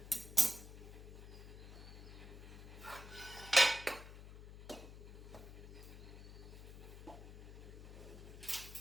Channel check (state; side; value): noise; left; hum, 13 dB below the sound